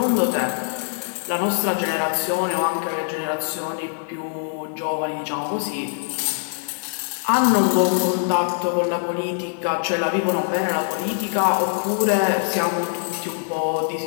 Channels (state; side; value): silent; right; 63 dB below the other